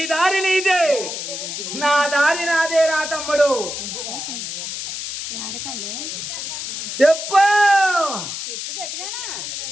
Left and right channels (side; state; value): left; noise; hiss, 6 dB below the sound